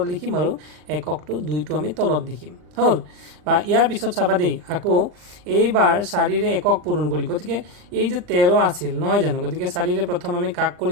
লিখিম আৰু এককটো 2টো আমি তলত লিখিম, হ'ল। বা ইয়াৰ পিছত চাবা দেই, আকৌ এইবাৰ 4ৰে একক পূৰণ কৰি, গতিকে এই যে 13 আছিল নহয় জানো, গতিকে 4ৰে প্ৰথম আমি কাক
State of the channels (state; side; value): late; left; 39 ms